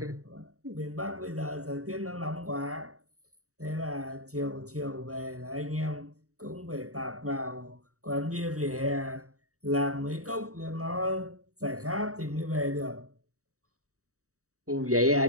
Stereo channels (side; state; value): left; late; 0.65 ms